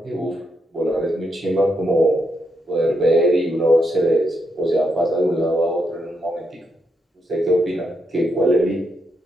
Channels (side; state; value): both; normal; correlation 0.80